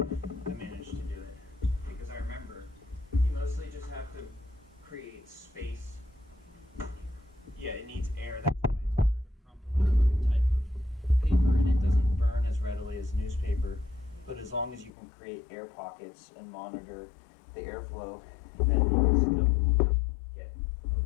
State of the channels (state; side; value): drops out; right; at 14.9 s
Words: I managed to do it. Because I remember, you mostly just have to create space. Yeah, it needs air. That's why it's harder to crumple type of paper, and it doesn't burn as readily as newspaper. But as long as you can create air pockets and monitor the airflow, then you can still get